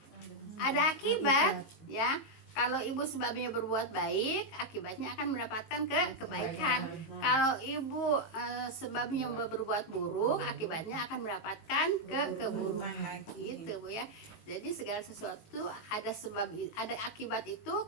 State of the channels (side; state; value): right; late; 18 ms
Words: Ada akibat ya. Kalau ibu sebabnya berbuat baik, akibatnya akan mendapatkan kebaikan. Kalau ibu sebabnya berbuat buruk, akibatnya akan mendapatkan keburukan. Gitu Bu ya. Jadi segala sesuatu ada sebab, ada akibat itu